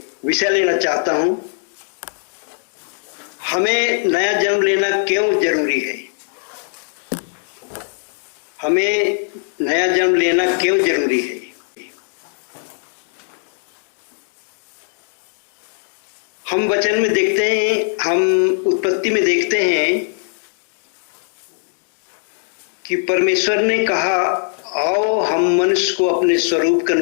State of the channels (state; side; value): silent; right; digital silence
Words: विषय लेना चाहता हूं। हमें नया जन्म लेना क्यों जरूरी है? हमें नया जन्म लेना क्यों जरूरी है? हम वचन में देखते हैं, हम उत्पत्ति में देखते हैं कि परमेश्वर ने कहा, आओ हम मनुष्य को अपने स्वरूप के